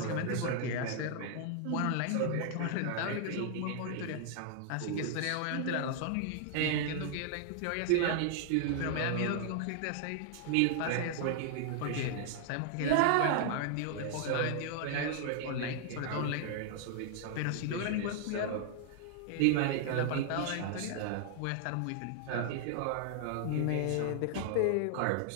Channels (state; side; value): different; both; correlation 0.00